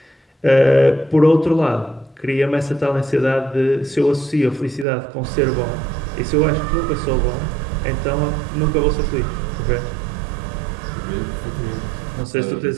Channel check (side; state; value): left; drops out; at 4.9 s